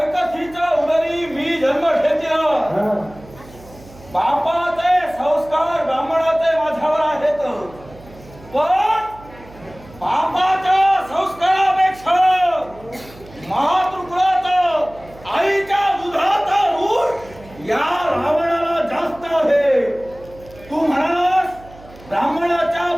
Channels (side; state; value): right; noise; hum, 21 dB below the sound